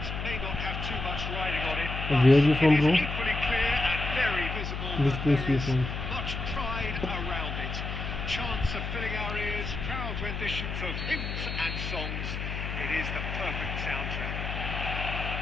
may not have too much riding on it. Where are you from, bro? It is equally clear and very visible Which that place there you is from? much pride around it. Chants are filling our ears, proud renditions of hymns and songs. It is the perfect soundtrack.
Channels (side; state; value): left; noise; hum, 4 dB below the sound